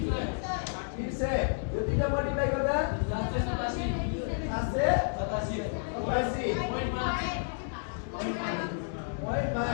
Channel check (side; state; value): right; silent; digital silence